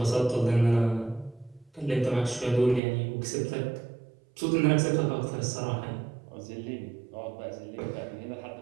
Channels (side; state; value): left; drops out; at 2.8 s